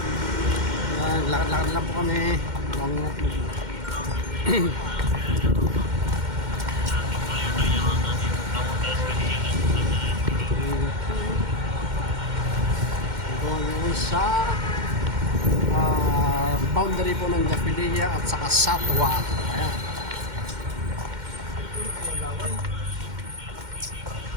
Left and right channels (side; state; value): left; late; 2.1 ms